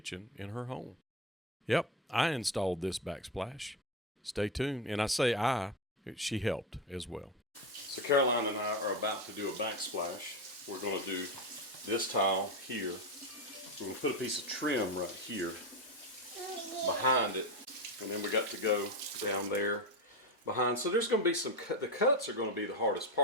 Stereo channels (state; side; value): normal; both; correlation 0.15